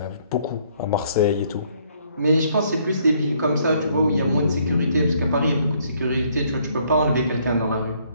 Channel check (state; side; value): inverted; both; correlation -0.66